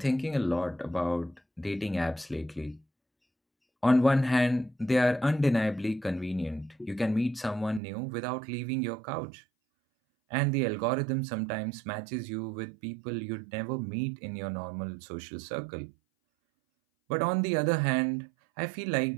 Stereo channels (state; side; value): drops out; left; at 7.8 s